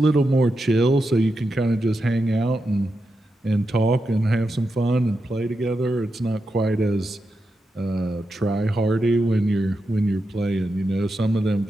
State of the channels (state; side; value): normal; both; correlation 0.87